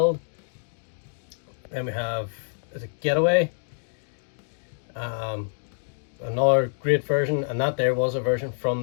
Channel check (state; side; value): silent; right; digital silence